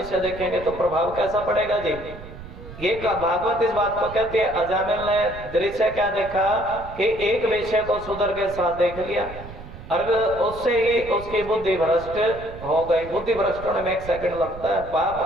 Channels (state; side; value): noise; right; rumble, 14 dB below the sound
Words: देखेंगे तो प्रभाव कैसा पड़ेगा जी? ये भागवत इस बात को कहते हैं। अजामिल ने दृश्य क्या देखा कि एक विषय को सुधर के साथ देख लिया, और उससे ही उसकी बुद्धि भ्रष्ट हो गई। बुद्धि भ्रष्ट होने में 1 सेकंड लगता है,